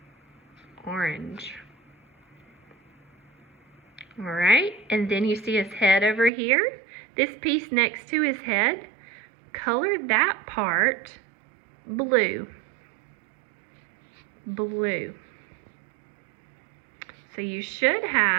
Orange. Alright, and then you see his head over here. This piece next to his head, color that part blue. Blue. So you should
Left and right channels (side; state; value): left; drops out; at 6.3 s